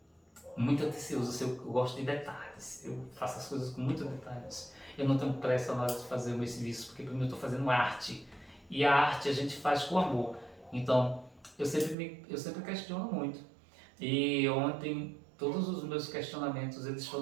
atencioso, eu gosto de detalhes, eu faço as coisas com muitos detalhes. Eu não tenho pressa na hora de fazer o meu serviço, porque primeiro eu estou fazendo arte, e a arte a gente faz com amor. Então, eu sempre questiono muito. E ontem, todos os meus questionamentos, eles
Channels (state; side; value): drops out; left; at 12.0 s